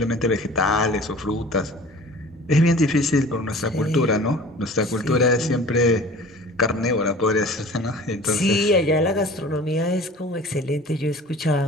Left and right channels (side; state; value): both; normal; correlation 0.44